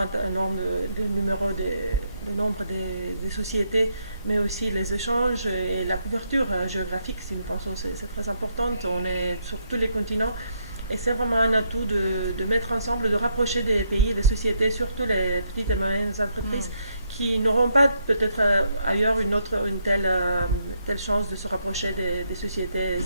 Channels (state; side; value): inverted; both; correlation -0.77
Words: nombre de nombre des sociétés, mais aussi les échanges et la couverture géographique, si nous pensons que c'est très important. On est sur tous les continents. Et c'est vraiment un atout de mettre ensemble, de rapprocher des pays et des sociétés, surtout les petites et moyennes entreprises, qui n'auront pas peut-être ailleurs une telle chance de se rapprocher des sociétés